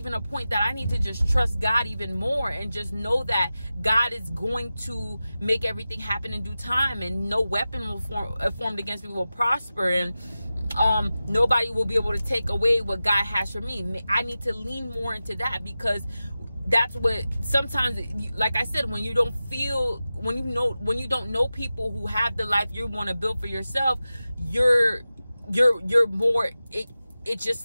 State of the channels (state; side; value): inverted; both; correlation -0.94